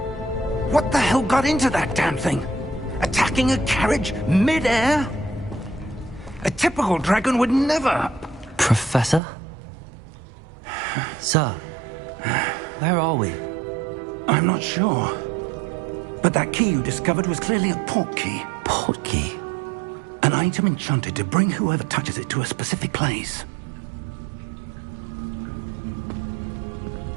What the hell got into that damn thing? Attacking a carriage mid-air? A typical dragon would never... Professor? Sir, where are we? I'm not sure. But that key you discovered was clearly a port key. Port key? An item enchanted to bring whoever touches it to a specific place.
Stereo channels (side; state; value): left; drops out; at 9.2 s